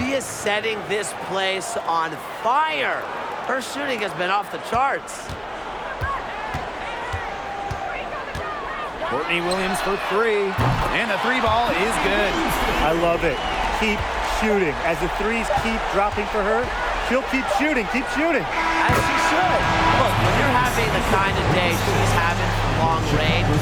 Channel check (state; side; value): identical; both; correlation 1.00